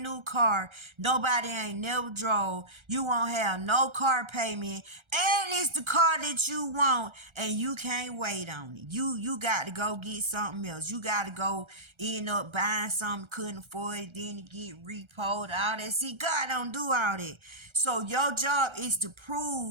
new car nobody ain't never drove. You won't have no car payment, and it's the car that you want, and you can't wait on it. You got to go get something else. You got to go end up buying something couldn't afford it, then to get repoed, all that. See, God don't do all that. So your job is to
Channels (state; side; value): late; left; 1.3 ms